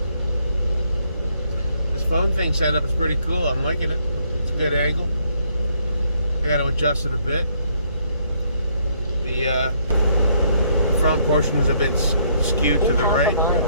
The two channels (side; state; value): both; inverted; correlation -0.69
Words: This phone thing setup is pretty cool. I'm liking it. It's a good angle. I got to adjust it a bit. The front portion is a bit skewed to the right.